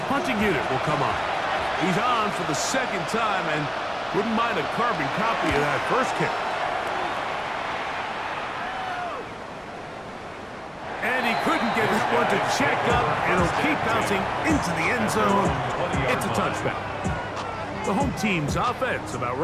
punting unit will come on. He's on for the 2nd time, and wouldn't mind a carbon copy of that first kick. And he couldn't get his one to check up, and he'll keep bouncing into the end zone. It's a touchdown. The home team's offense about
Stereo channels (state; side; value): identical; both; correlation 1.00